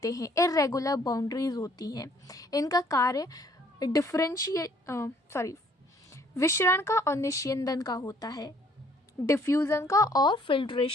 हैं, इर्रेगुलर बाउंड्रीज होती हैं। इनका कार्य विशरण का और निस्यंदन का होता है, डिफ्यूज़न का और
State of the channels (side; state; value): both; normal; correlation 0.61